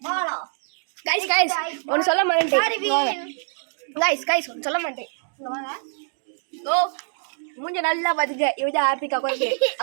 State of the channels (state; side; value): silent; left; digital silence